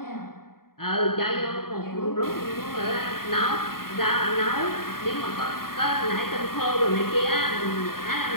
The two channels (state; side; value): late; right; 0.93 ms